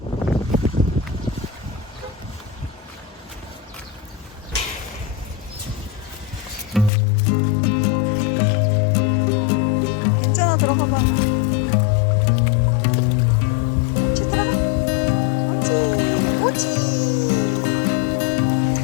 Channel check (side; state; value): right; drops out; at 6.9 s